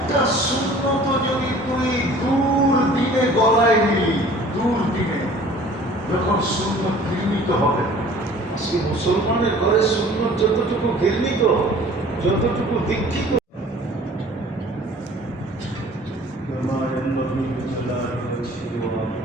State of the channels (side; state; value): both; normal; correlation 0.49